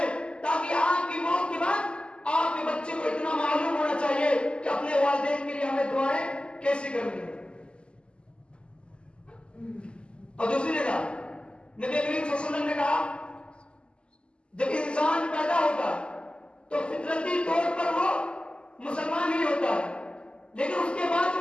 تاکہ آپ کی موت کے بعد آپ کے بچے کو اتنا معلوم ہونا چاہیے کہ اپنے والدین کے لیے ہمیں دعائیں کیسی کرنی ہے. اور دوسری جگہ نبی کریم صلی اللہ علیہ وسلم نے کہا جب انسان پیدا ہوتا ہے تو فطرتی طور پر وہ مسلمان ہی ہوتا ہے، لیکن اس کے بعد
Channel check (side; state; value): right; late; 0.051 ms